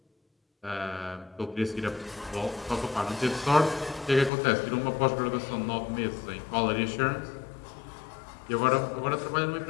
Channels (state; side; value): drops out; right; at 4.3 s